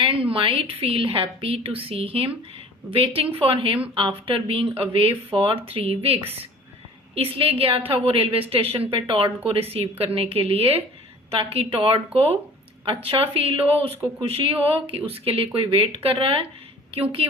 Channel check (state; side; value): normal; both; correlation 0.46